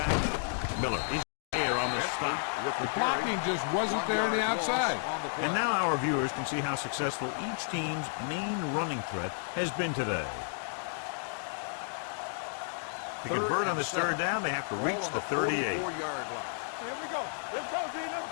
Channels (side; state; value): right; silent; digital silence